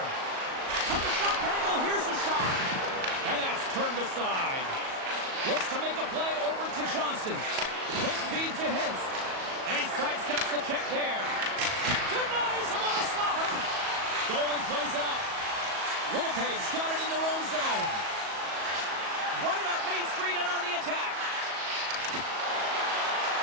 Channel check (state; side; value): late; left; 37 ms